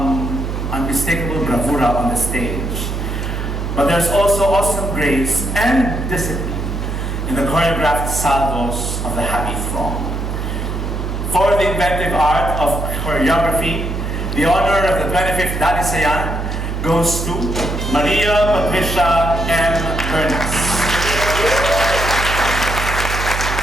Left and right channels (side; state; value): right; noise; hum, 3 dB below the sound